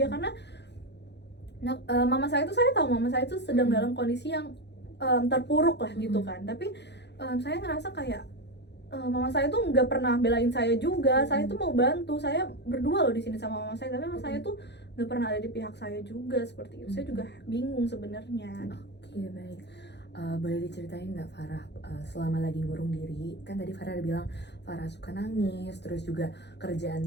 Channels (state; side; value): late; right; 0.50 ms